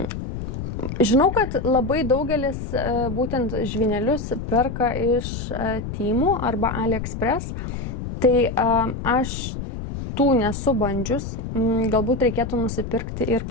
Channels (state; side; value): noise; left; rumble, 6 dB below the sound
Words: Žinau, kad labai daugelis būtent žvynelius perka iš Temu arba AliExpress, tai aš tų nesu bandžius, galbūt reikėtų nusipirkti ir